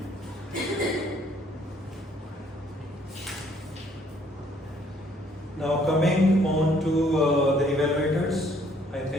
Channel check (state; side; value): normal; both; correlation 0.63